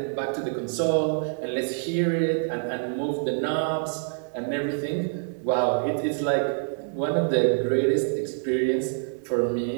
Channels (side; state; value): left; silent; digital silence